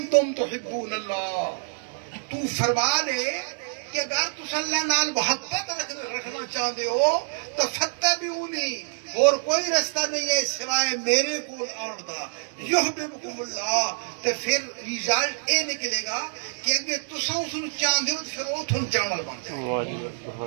تحبون اللہ، تو فرما دے کہ اگر تس اللہ نال محبت رکھنا چاہتے ہو تو فتبعونی، اور کوئی رستہ نہیں ہے سوائے میرے کول آن دا، یحببکم اللہ، تو پھر ریزلٹ اے نکلے گا کہ اگر تساں اس نوں چاہتے ہو تو پھر وہ تھن چاہنا بن جائے۔ واہ جی واہ، سبحان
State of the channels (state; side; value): silent; left; digital silence